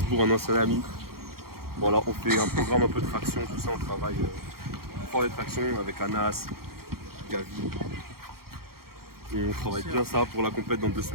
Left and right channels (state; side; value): late; left; 0.94 ms